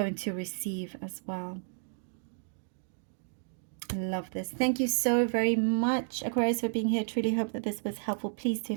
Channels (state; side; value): silent; left; digital silence